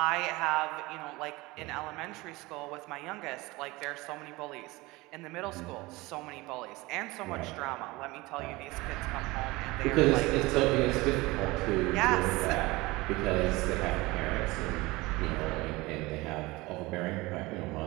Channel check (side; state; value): left; quieter; 21.8 dB